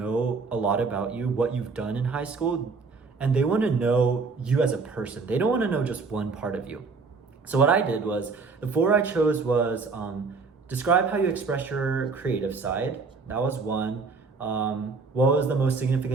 a lot about you, what you've done in high school, and they want to know you as a person. They don't want to know just one part of you. So what I did was, the 4 I chose was describe how you express your creative side. That was one. What was the most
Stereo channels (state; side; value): quieter; left; 4.5 dB